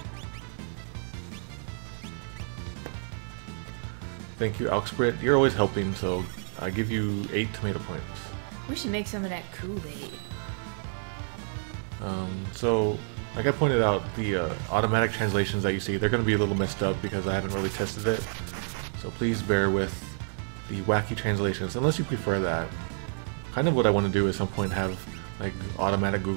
thank you, Alxbrit. You're always helping, so I give you 8 tomato points. We should make some of that Kool-Aid. So, like I pointed out, the automatic translations that you see, they're going to be a little messed up because I haven't really tested it. So please bear with the wacky translations, unless you prefer that. Kind of what I want to do at some point have like automatic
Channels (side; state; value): left; silent; 58 dB below the other